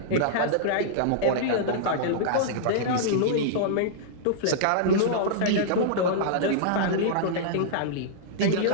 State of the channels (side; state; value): both; different; correlation -0.02